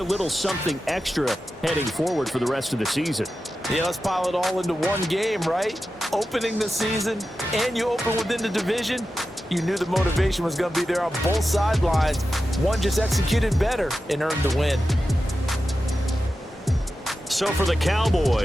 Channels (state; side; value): normal; both; correlation 0.92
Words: a little something extra heading forward for the rest of the season. Yeah, let's pile it all into one game, right? Opening the season, and you open within the division. You knew the motivation was going to be there on both sidelines. One just executed better and earned the win. So for the